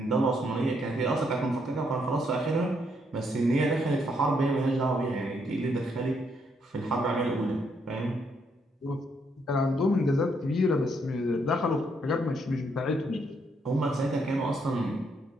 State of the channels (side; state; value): both; normal; correlation 0.74